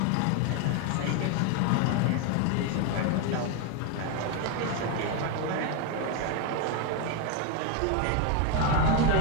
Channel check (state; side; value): different; both; correlation 0.01